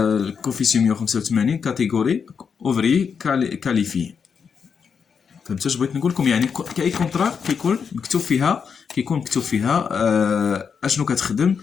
كوفيسيون 185 كاتيجوري اوفري كاليفي. فهمتوا اش بغيت نقول لكم؟ يعني كاي كونطرا كيكون مكتوب فيها اشنو كتخدم،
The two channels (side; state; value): right; quieter; 6.3 dB